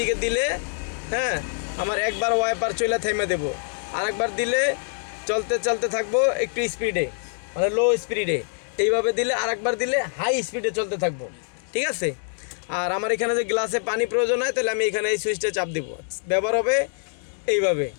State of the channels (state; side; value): silent; right; 62 dB below the other